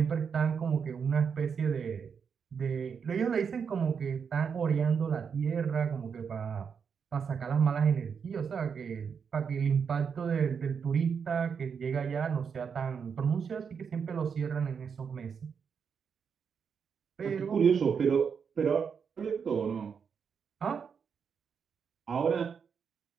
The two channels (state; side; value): quieter; left; 6.5 dB